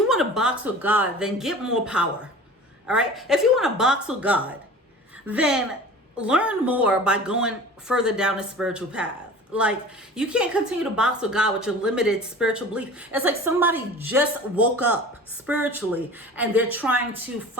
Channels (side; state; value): both; normal; correlation 0.40